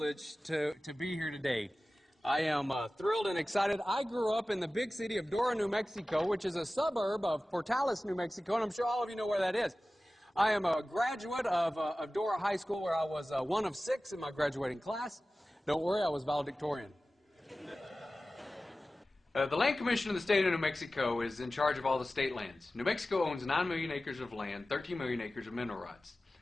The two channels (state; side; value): normal; both; correlation 0.96